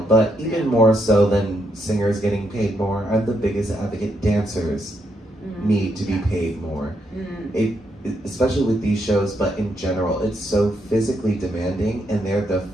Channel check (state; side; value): normal; both; correlation 0.78